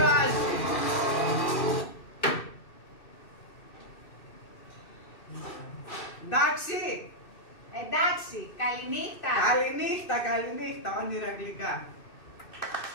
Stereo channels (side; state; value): right; late; 2.6 ms